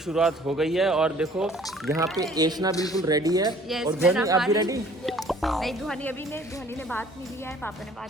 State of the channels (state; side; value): normal; both; correlation 0.54